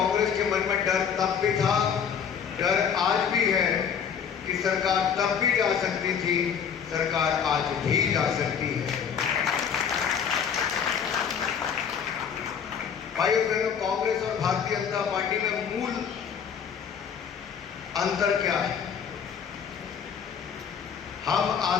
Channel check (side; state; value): right; quieter; 7.4 dB